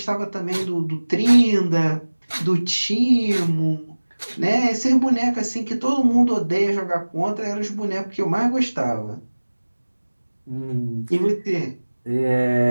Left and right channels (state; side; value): inverted; both; correlation -1.00